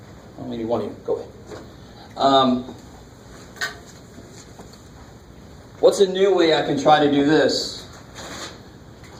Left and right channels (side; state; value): both; identical; correlation 1.00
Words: Oh, maybe one of you. Go ahead. What's a new way I can try to do this?